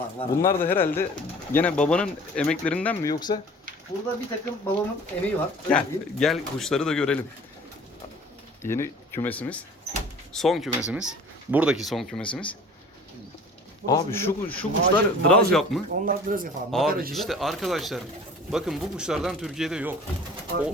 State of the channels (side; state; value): both; normal; correlation 0.46